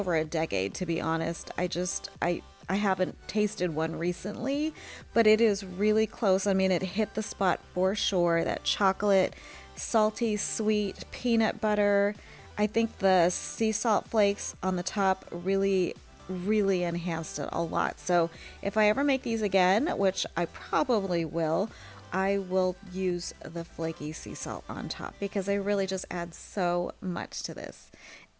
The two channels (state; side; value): identical; both; correlation 1.00